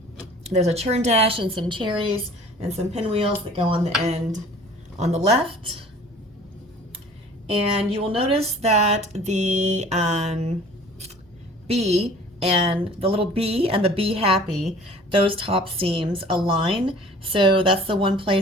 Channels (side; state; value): both; normal; correlation 0.48